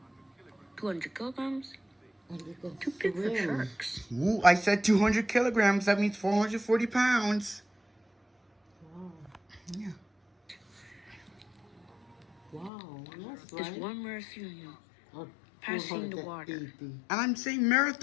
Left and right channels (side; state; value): right; drops out; at 12.7 s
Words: 200 kilograms? And they can Too big for swim. sharks. Ooh, I said 200 kilograms. That means 440 pounds. Wow. Yeah. Wow, that's There's right. one Moeritherium Or passing the 480. And I'm saying